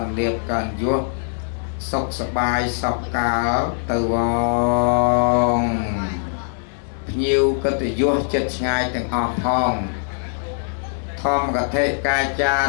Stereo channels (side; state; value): right; silent; digital silence